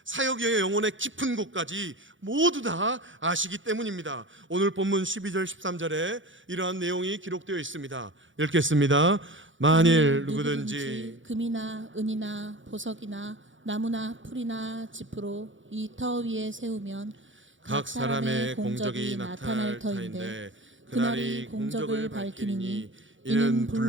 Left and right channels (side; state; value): left; late; 0.56 ms